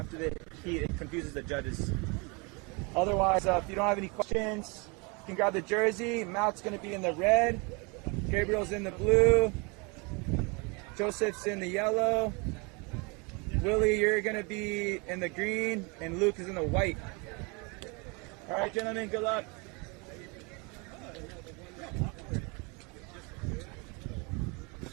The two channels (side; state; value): left; quieter; 30.2 dB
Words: the heat. It confuses the judges. Otherwise, if you don't have any questions, you can grab the jersey. Matt's going to be in the red. Gabriel's in the blue. Joseph's in the yellow. Willie, you're going to be in the green, and Luke is in the white. All right, gentlemen, good luck.